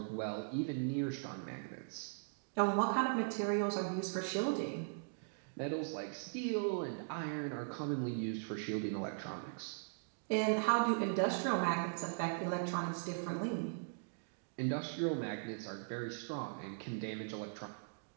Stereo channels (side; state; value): left; silent; digital silence